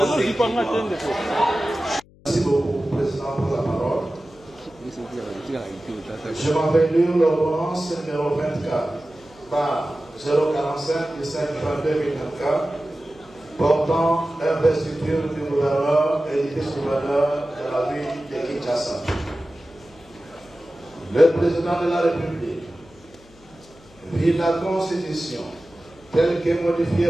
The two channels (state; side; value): noise; left; hum, 26 dB below the sound